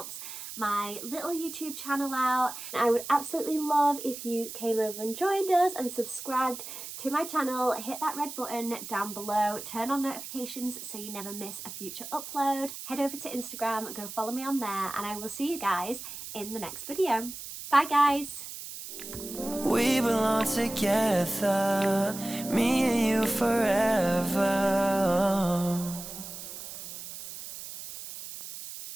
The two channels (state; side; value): noise; right; hiss, 10 dB below the sound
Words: my little YouTube channel out. I would absolutely love if you came over and joined us and subscribed to my channel. Hit that red button down below, turn on notifications so you never miss a future upload. Head over to Instagram, go follow me on there, and I will see you guys in the next video. Bye guys. We belong together, me and you forever.